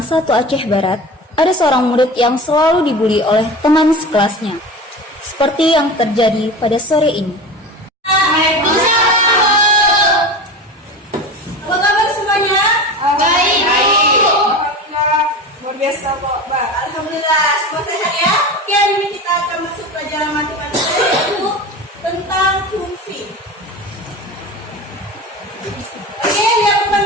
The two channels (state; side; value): normal; both; correlation 0.31